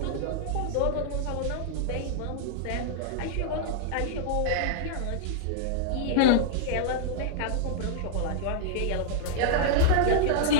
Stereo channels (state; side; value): different; both; correlation -0.01